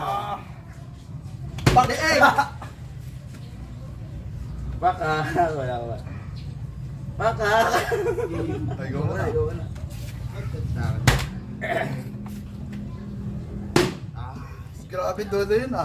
Pag-egg! Baka. Wala. Baka. Ay, go mo na. Grabe dulo yun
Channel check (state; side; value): identical; both; correlation 1.00